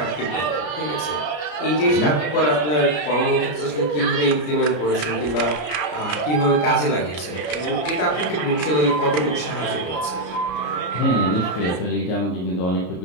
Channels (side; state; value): right; late; 33 ms